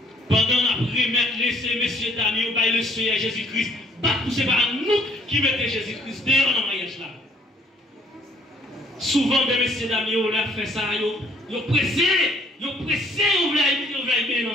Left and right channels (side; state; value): both; normal; correlation 0.61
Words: Pendant la remettre laisser messieurs dames, on va le Seigneur Jésus-Christ. Pas pousser par nous qui mettons Jésus-Christ dehors dans le mariage là. Souvent, des messieurs d'amis, on a fait ça, ils ont pressé, ils voulaient mettre dans le